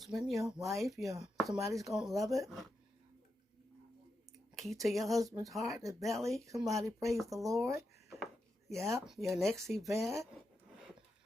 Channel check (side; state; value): both; normal; correlation 0.87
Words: your wife, somebody's going to love it. Key to your husband's heart, his belly. Somebody praise the Lord. Yeah, your next event.